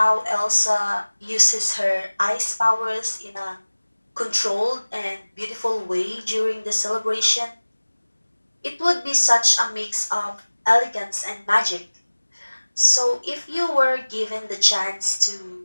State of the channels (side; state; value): both; inverted; correlation -1.00